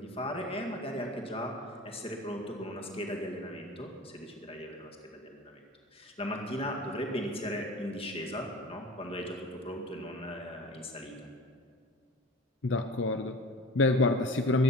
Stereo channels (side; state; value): both; normal; correlation 0.38